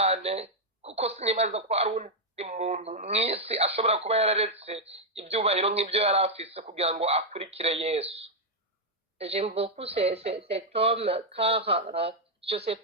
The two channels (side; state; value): both; normal; correlation -0.01